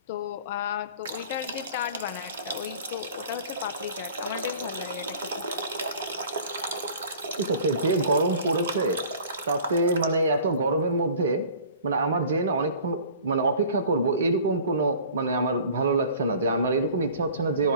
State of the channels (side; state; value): both; inverted; correlation -0.46